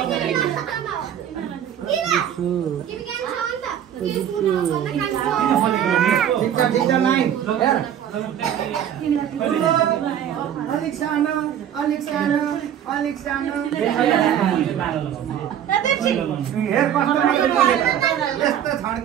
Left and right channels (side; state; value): left; quieter; 9.8 dB